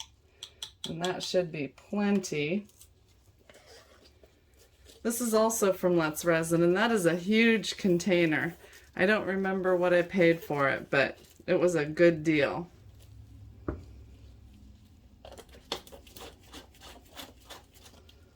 and that should be plenty. This is also from Let's Resin, and that is a huge container. I don't remember what I paid for it, but it was a good deal.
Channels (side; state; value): both; identical; correlation 1.00